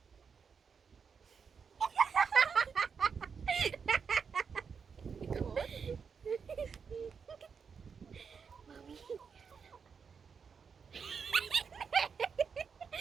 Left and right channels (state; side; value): quieter; left; 6.1 dB